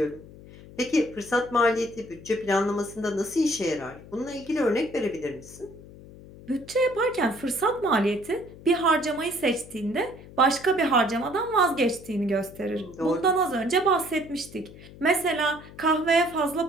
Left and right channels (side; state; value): left; noise; hum, 18 dB below the sound